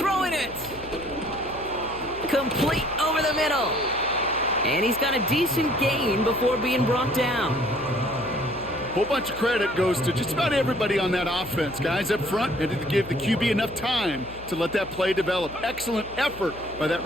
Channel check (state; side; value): noise; left; hum, 17 dB below the sound